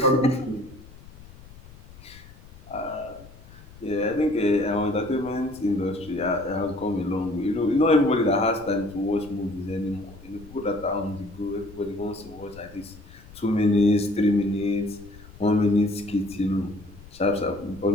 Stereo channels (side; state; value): left; noise; rumble, 20 dB below the sound